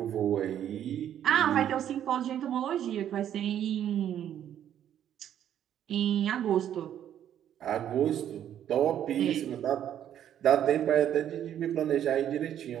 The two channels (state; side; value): quieter; left; 10.4 dB